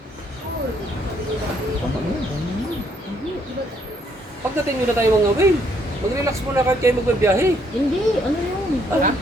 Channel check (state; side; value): normal; both; correlation 0.69